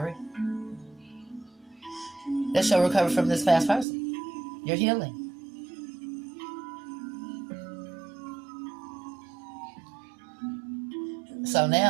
That's your recovery from this past person. You're healing. So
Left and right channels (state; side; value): drops out; left; at 3.9 s